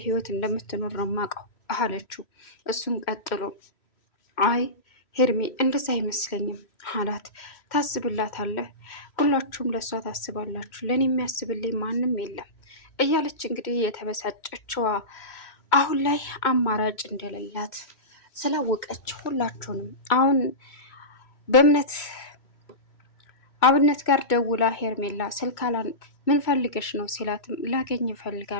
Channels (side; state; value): right; late; 3.1 ms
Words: ህይወት እንደምትኖር ነው የማውቀው አለችው። እሱም ቀጥሎ አይ ሄርሜ እንደዛ አይመስለኝም አላት። ታስብላታለህ፣ ሁላችሁም ለእሷ ታስባላችሁ፣ ለእኔ የሚያስብልኝ ማንም የለም እያለች እንግዲህ የተበሳጨችዋ አሁን ላይ አማራጭ እንደሌላት ስላወቀች ሁላችሁንም አሁን በእምነት አብነት ጋር ደውላ ሄርሜላ ስልካላን ምን ፈልገሽ ነው ሲላትም ላገኝ